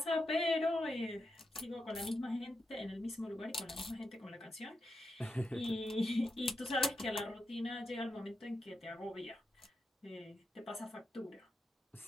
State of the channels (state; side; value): normal; both; correlation 0.85